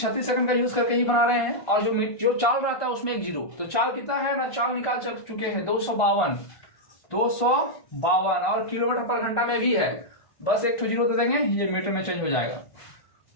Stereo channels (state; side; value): late; right; 1.5 ms